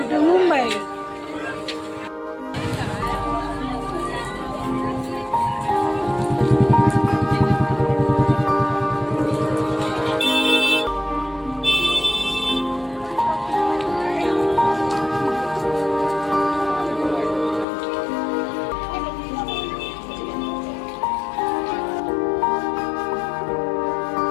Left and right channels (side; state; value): right; drops out; at 17.7 s